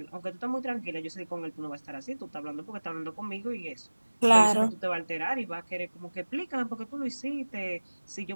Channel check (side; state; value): both; inverted; correlation -1.00